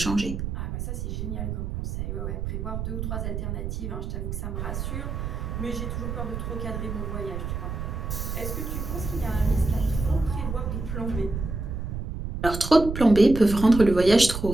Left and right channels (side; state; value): right; noise; rumble, 4 dB below the sound